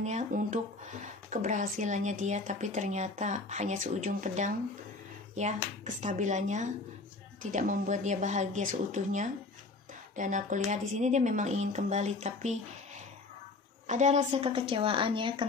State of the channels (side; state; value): right; quieter; 3.6 dB